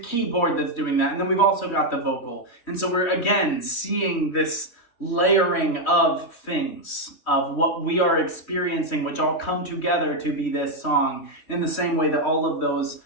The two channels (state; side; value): late; right; 3.1 ms